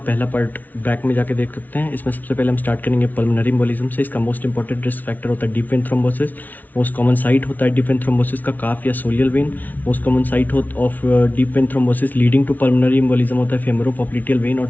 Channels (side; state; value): right; late; 0.080 ms